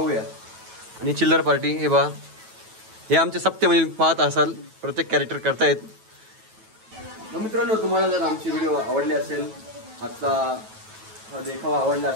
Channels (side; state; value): left; late; 9.2 ms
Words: आणि चिल्लर पार्टी हे बा, हे आमचे सप्ते म्हणजे पाहत असाल प्रत्येक कॅरेक्टर करतायत. मित्रांनो, तुम्हाला जर आमची व्हिडिओ आवडली असेल, आजचा हा देखावा आवडला